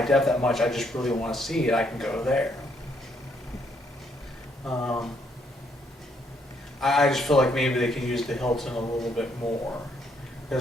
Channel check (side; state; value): both; normal; correlation 0.71